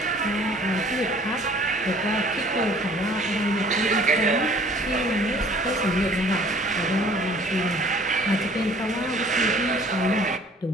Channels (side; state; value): both; normal; correlation 0.53